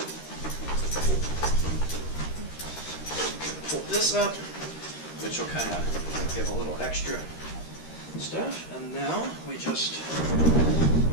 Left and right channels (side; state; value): right; late; 13 ms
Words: this up, which will kind of give a little extra stuff. And now we just